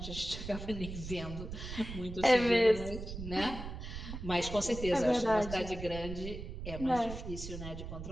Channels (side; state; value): right; noise; rumble, 8 dB below the sound